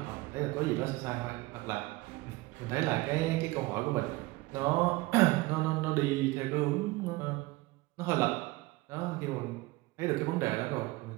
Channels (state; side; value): quieter; left; 21.0 dB